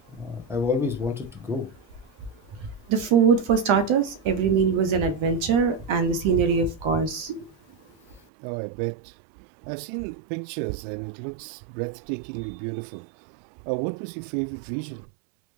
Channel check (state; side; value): drops out; left; at 8.2 s